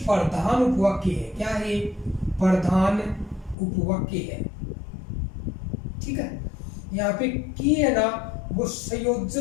उपवाक्य है। क्या है? प्रधान उपवाक्य है, ठीक है। यहाँ पे की है ना, वो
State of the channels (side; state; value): right; drops out; at 3.6 s